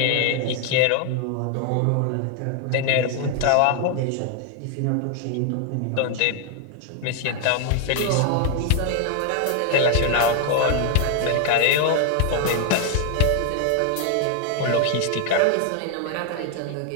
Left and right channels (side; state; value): both; different; correlation 0.00